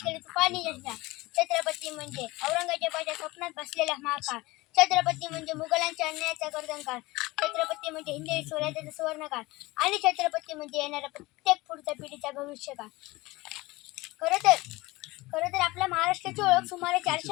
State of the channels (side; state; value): right; quieter; 21.1 dB